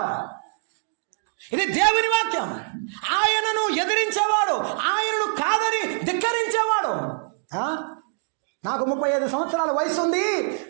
ఇది దేవుని వాక్యం. ఆయనను ఎదిరించేవాడు, ఆయనను కాదని ధిక్కరించేవాడు. నాకు 35 సంవత్సరాల వయసు ఉంది,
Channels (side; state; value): left; silent; digital silence